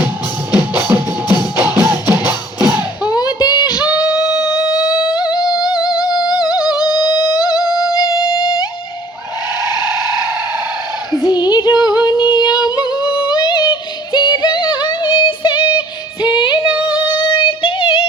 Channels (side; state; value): both; normal; correlation 0.54